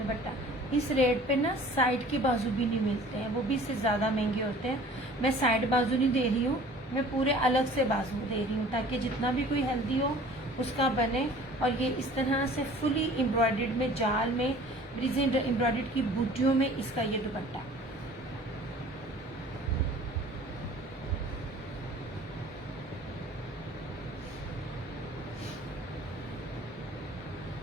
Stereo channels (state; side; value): normal; both; correlation 0.48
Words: इस रेट पे ना साइड के बाजू भी नहीं मिलते हैं, वो भी इससे ज़्यादा महंगे होते हैं। मैं साइड बाजू नहीं दे रही हूँ, मैं पूरे अलग से बाजू दे रही हूँ ताकि जितना भी कोई हेल्दी हो उसका बने। और ये इस तरह से फुली एम्ब्रॉयडर्ड में जाल में ब्रिज एम्ब्रॉयडर्ड की बूटियों में इसका ये दुपट्टा।